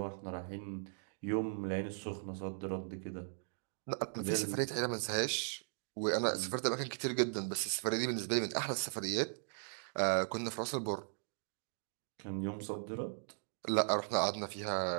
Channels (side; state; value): left; silent; digital silence